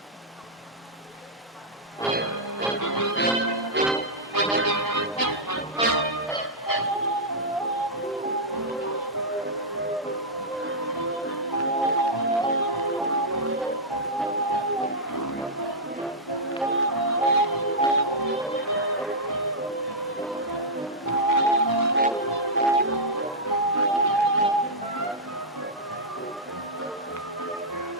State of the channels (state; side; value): normal; both; correlation -0.07